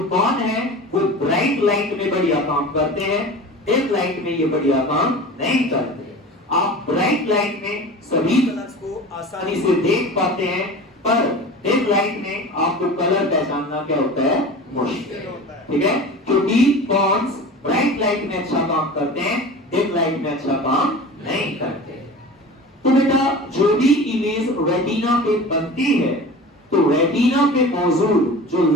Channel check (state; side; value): normal; both; correlation 0.35